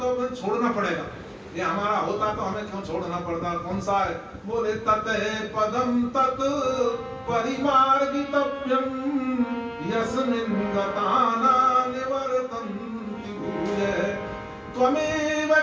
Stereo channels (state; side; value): identical; both; correlation 1.00